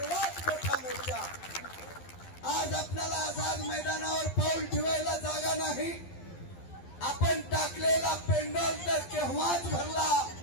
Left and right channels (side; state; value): right; late; 11 ms